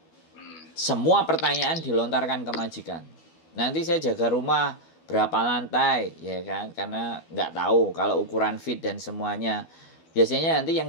Semua pertanyaan dilontarkan ke majikan. Nanti saya jaga rumah berapa lantai, ya kan? Karena nggak tahu kalau ukuran feet dan semuanya. Biasanya nanti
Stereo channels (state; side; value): late; right; 12 ms